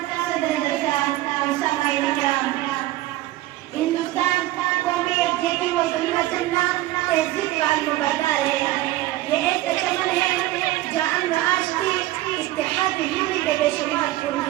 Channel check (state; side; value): quieter; left; 16.4 dB